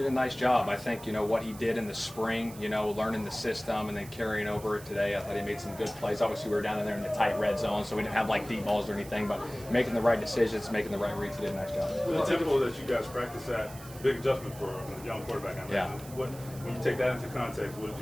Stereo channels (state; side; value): noise; right; hiss, 17 dB below the sound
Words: a nice job. I think, what he did in the spring, learning the system and then carrying over it today, I thought he made some good plays. Obviously, we were down in there in the tight red zone, so we didn't have deep balls or anything, but making the right decisions, making the right reads, he did a nice job. Well, the tempo that you guys practice at, big adjustment for a young quarterback. Yeah. When you take that into context, what